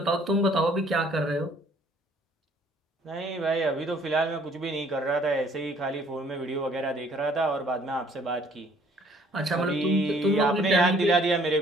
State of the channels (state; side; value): normal; both; correlation 0.60